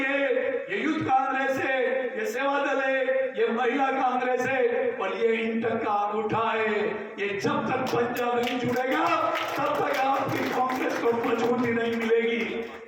ये यूथ कांग्रेस है, ये सेवा दल है, ये महिला कांग्रेस है और ये इंटर का अंगूठा है। ये जब तक पंजा नहीं जुड़ेगा तब तक आपकी कांग्रेस को मजबूती नहीं मिलेगी।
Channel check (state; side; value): identical; both; correlation 1.00